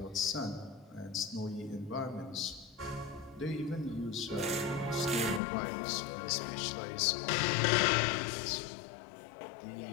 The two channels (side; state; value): right; drops out; at 5.4 s